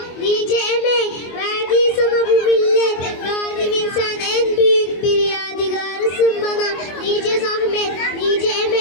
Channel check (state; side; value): late; right; 24 ms